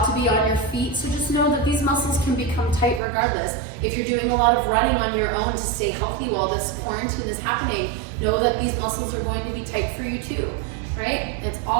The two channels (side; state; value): left; drops out; at 3.0 s